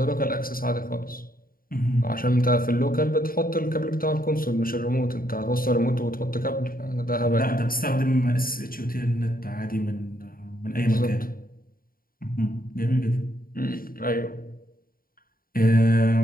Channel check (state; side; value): late; right; 0.42 ms